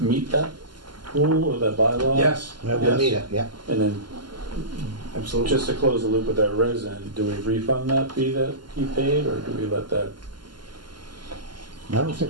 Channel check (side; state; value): left; late; 0.71 ms